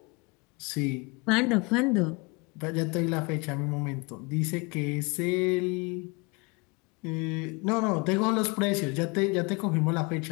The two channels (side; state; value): right; quieter; 28.6 dB